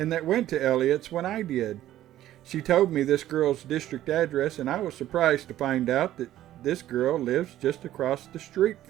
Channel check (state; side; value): quieter; left; 13.2 dB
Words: that went to Elliott's when I did. She told me this girl's district address, and I was surprised to find out that this girl lives just across the street